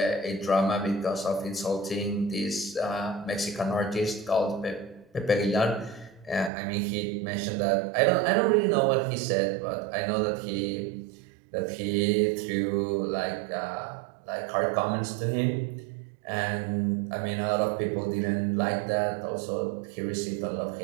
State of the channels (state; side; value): drops out; left; at 6.5 s